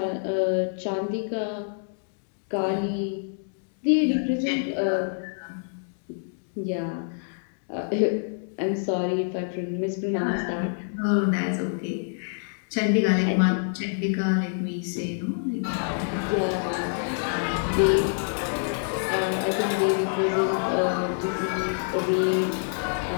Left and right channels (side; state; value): right; silent; digital silence